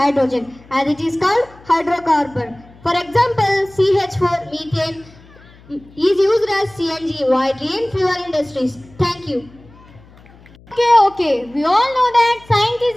as it is called hydrocarbon. For example, CH4, methane, is used as CNG widely in fuel industries. Thank you. Okay. We all know that science is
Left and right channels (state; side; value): noise; left; hum, 25 dB below the sound